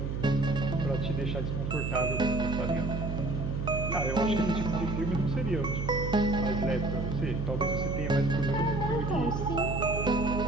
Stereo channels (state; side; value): noise; right; hum, 2 dB below the sound